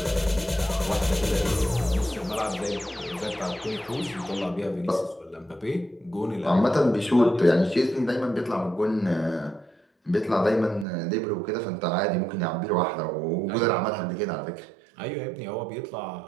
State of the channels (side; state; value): left; drops out; at 10.9 s